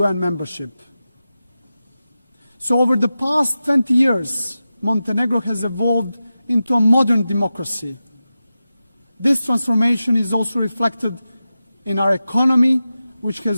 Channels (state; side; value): inverted; both; correlation -0.93